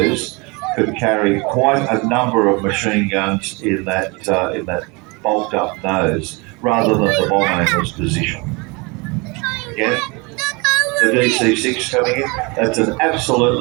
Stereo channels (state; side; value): quieter; left; 27.9 dB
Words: could carry quite a number of machine guns in that bulked up nose, rather than the bomb anger's position. Again, the DC-6 coming in. That's an